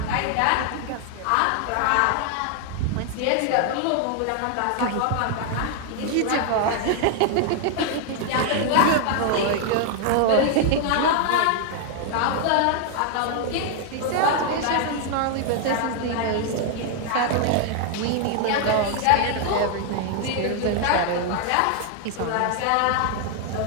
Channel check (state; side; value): different; both; correlation 0.00